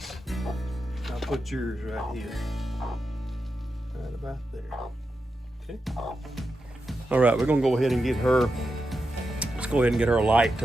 I'll put yours right here. Right about there. Okay. All right, we're gonna go ahead and get her, let's go ahead and get her light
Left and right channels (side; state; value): both; normal; correlation 0.88